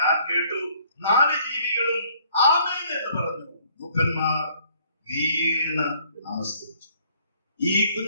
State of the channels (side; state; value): both; inverted; correlation -0.62